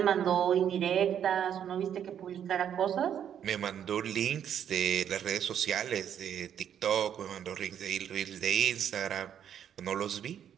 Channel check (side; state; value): left; quieter; 9.2 dB